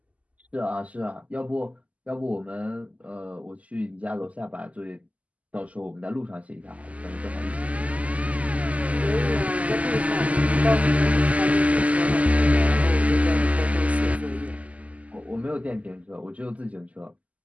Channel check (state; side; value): late; left; 0.070 ms